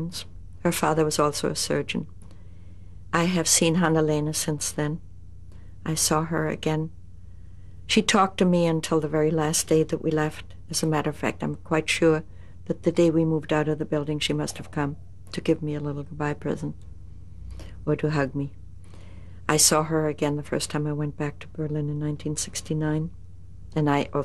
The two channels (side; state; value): both; identical; correlation 1.00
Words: Her father was also a surgeon. I have seen Hannelene since then. I saw her again. She talked to me until the very last day that we left. As a matter of fact, I'm quite sure that the day we moved out of the building, she must have come to give me a little goodbye present or to hug me. I saw her again the first time I went back to Berlin in 1969, and I